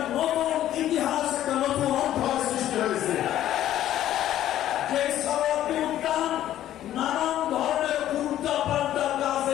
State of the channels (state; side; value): quieter; right; 12.4 dB